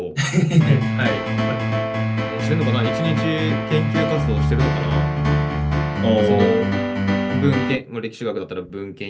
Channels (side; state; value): both; identical; correlation 1.00